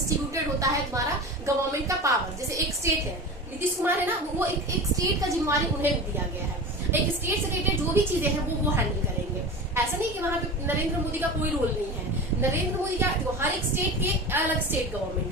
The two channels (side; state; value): both; normal; correlation 0.31